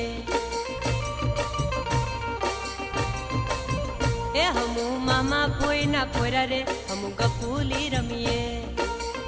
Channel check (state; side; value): identical; both; correlation 1.00